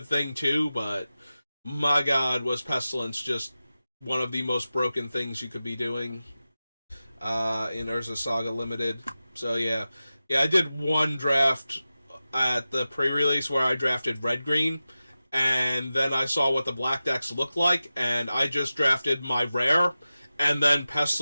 thing, too, but my god, was Pestilence just one of the most broken things you could be doing in Urza's Saga Limited. So, yeah, I did one draft at the pre-release where I drafted red-green, and then I saw what the black decks looked like, and I just drafted my rare, and then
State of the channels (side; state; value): both; inverted; correlation -0.94